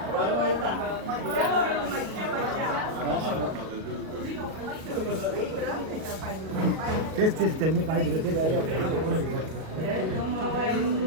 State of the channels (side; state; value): left; late; 38 ms